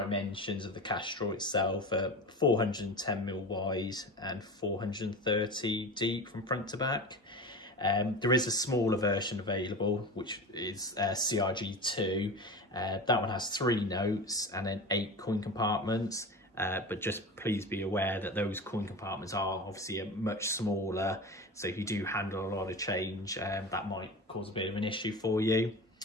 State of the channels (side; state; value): both; normal; correlation 0.29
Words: of the cash drawer itself are 410mm wide and 430 deep from front to back. There is a smaller version available, which is CRG2. That one has 3 notes and then 8 coin compartments. But just please be aware that those coin compartments are obviously much smaller. So if you do handle a lot of change, that might cause a bit of an issue for you.